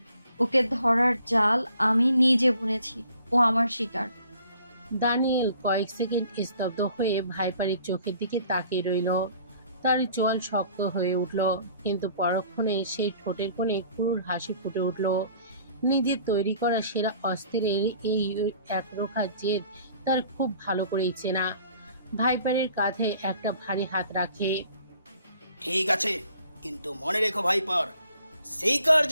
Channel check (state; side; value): inverted; both; correlation -0.55